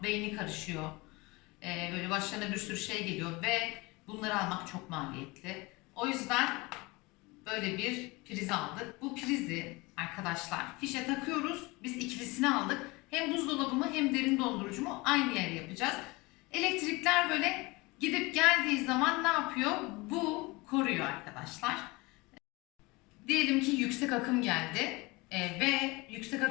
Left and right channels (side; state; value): right; quieter; 24.1 dB